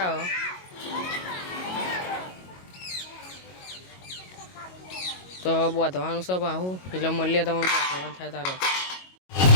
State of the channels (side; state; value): right; late; 22 ms